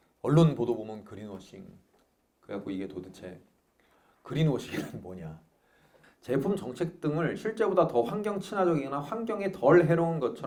언론 보도 보면 그린워싱. 그래갖고 이게 도대체 그린워싱은 뭐냐? 제품 정책 등을 실제보다 더 환경 친화적이거나 환경에 덜 해로운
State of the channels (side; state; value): both; identical; correlation 1.00